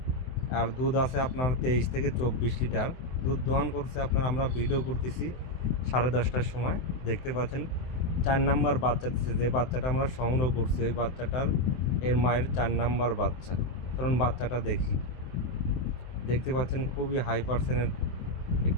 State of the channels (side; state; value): right; late; 23 ms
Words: আর দুধ আছে আপনার 23 থেকে 24 লিটার দুধ দোয়ান করছে। আপনার আমরা ভিডিও করতেছি 10:30টার সময়। দেখতে পাচ্ছেন 4 নাম্বার বাচ্চা দিচ্ছে। যে বাচ্চাটা আমরা সংগ্রহ করছি ওই বাচ্চাটার এর মায়ের 4 নাম্বার বাচ্চা। কারণ বাচ্চাটা দেখতে পাচ্ছেন খুবই হাই পার্সেন্টের